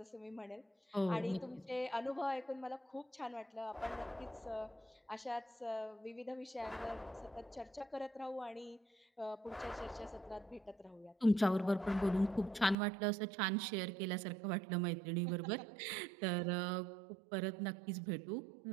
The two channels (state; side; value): drops out; left; at 12.8 s